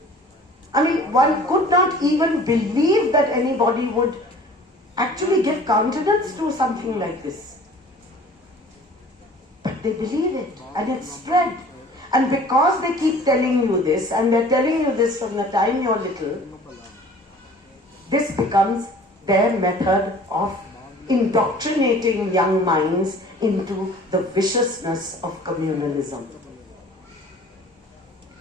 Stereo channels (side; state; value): both; normal; correlation 0.48